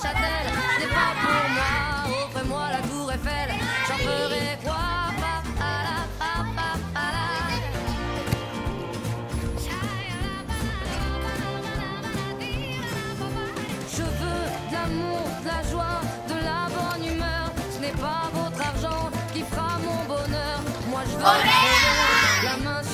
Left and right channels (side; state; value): both; identical; correlation 1.00